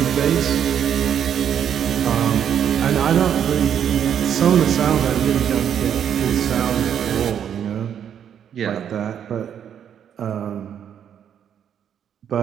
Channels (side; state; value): left; quieter; 8.9 dB